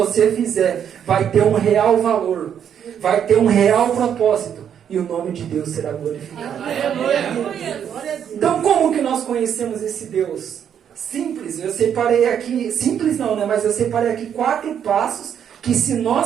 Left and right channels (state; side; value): quieter; left; 8.7 dB